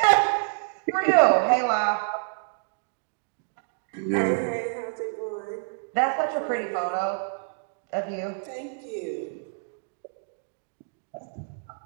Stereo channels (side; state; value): left; silent; digital silence